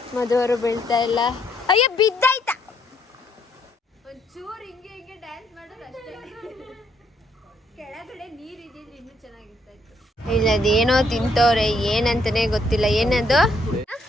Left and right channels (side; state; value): both; normal; correlation 0.71